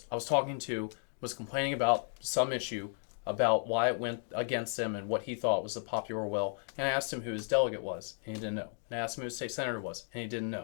was talking to was complaining about some issue about why it went against him and what he thought was the popular will. And I asked him who his delegate was, and he didn't know. And I asked him who his state senator was, and he didn't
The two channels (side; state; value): right; silent; 55 dB below the other